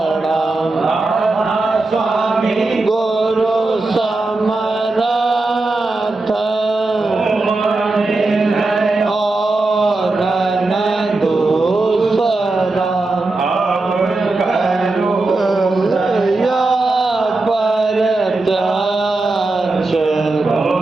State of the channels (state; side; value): quieter; left; 3.2 dB